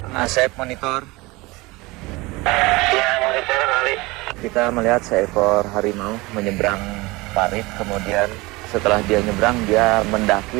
Asep monitor. Ya, monitor kali. Kita melihat seekor harimau menyeberang parit, kemudian setelah dia nyebrang dia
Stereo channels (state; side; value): quieter; left; 22.7 dB